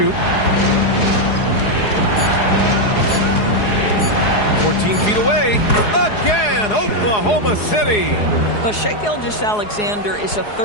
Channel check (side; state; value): right; late; 4.8 ms